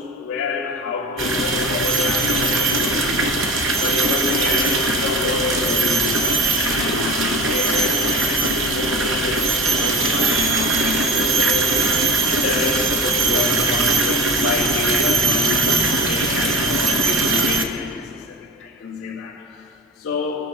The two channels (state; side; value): normal; both; correlation 0.32